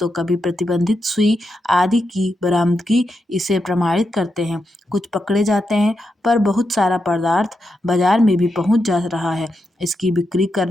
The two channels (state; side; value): normal; both; correlation 0.85